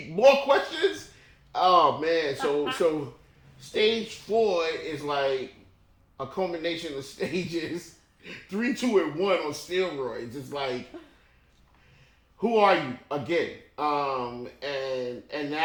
More questions? Oh man, so stage 4 is like a culmination of stages 3, 2, and 1 on steroids. It's like, who are you again? And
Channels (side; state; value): both; identical; correlation 1.00